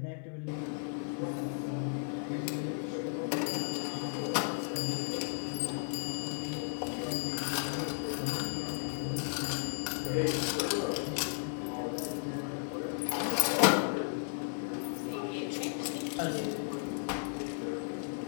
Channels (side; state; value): right; silent; digital silence